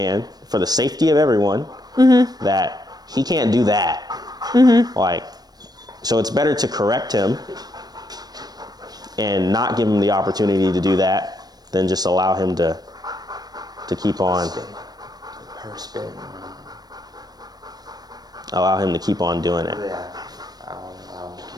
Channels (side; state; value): left; late; 0.19 ms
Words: for the safety of everyone, that he can't do that. Like, so it's better to correct him and not give him the opportunity to do that than just allow him to keep on. Per spin. Allow him to keep on doing it. Yeah. I won't allow him to